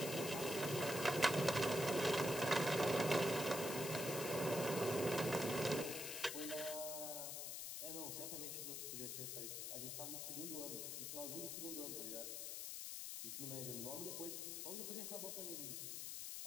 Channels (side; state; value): left; noise; hiss, 4 dB below the sound